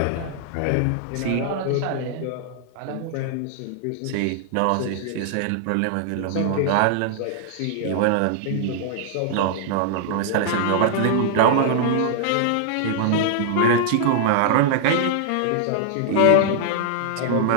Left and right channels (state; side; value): different; both; correlation -0.01